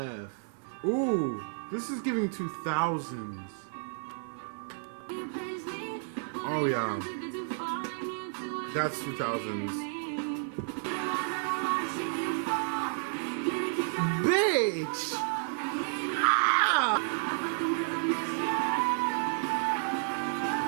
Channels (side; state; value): left; silent; 57 dB below the other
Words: Ooh, this is giving 2000s. Oh yeah. That's 2000s. Bitch! Ah!